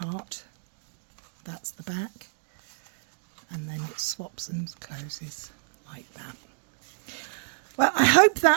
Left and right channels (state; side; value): silent; left; digital silence